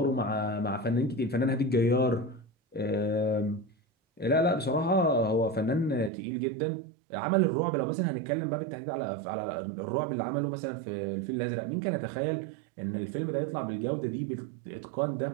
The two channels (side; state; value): left; drops out; at 6.1 s